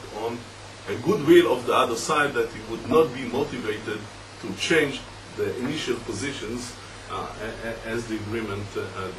on a goodwill of the other side that you would not be motivated to change the initial positions as the agreement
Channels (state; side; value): identical; both; correlation 1.00